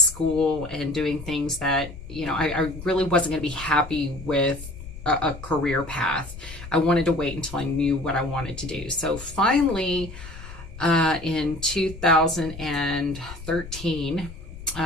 and doing things that, you know, I really wasn't going to be happy with a career path. I wanted to wait until I knew what I wanted to do. So finally, in 2013,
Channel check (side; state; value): left; noise; rumble, 13 dB below the sound